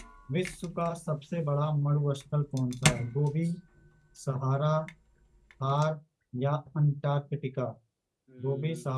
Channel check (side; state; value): both; identical; correlation 1.00